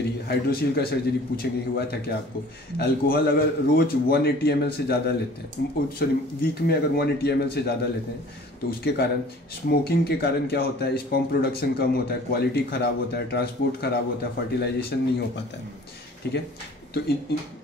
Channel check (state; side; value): normal; both; correlation 0.49